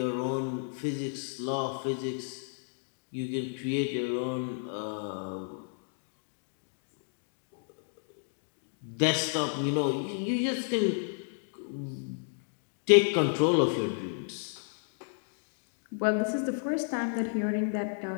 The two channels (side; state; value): right; silent; digital silence